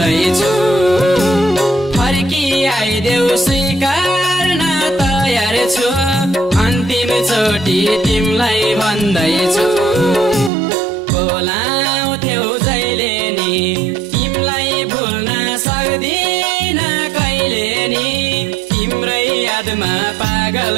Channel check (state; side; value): drops out; left; at 10.5 s